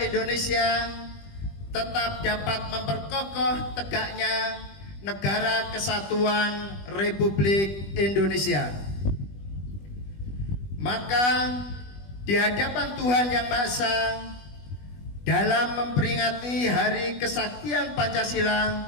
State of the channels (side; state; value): right; late; 20 ms